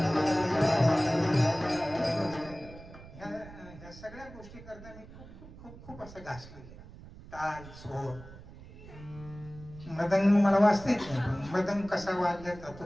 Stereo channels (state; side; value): noise; right; rumble, 17 dB below the sound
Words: ह्या सगळ्या गोष्टी करता मी खूप खूप खूप असं घासलेले. टाळ सोड मृदंग मला वाजता येत नाही, पण मृदंग कसा वाजला जातो